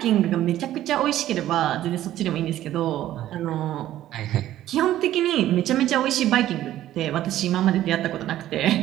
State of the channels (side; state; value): left; quieter; 13.3 dB